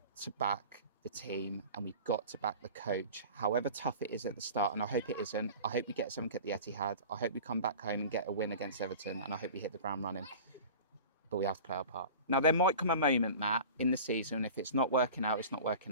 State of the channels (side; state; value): both; inverted; correlation -0.38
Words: to back the team and we've got to back the coach, however tough it is at the start. And I hope it isn't. I hope we get something at the Etihad. I hope we come back home and get a win against Everton. And I hope we hit the ground running. But we have to play our part. Now, there might come a moment, Matt, in the season, if it's not working out, it's not